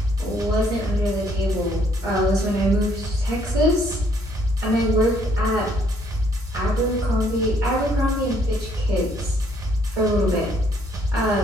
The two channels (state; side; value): normal; both; correlation 0.66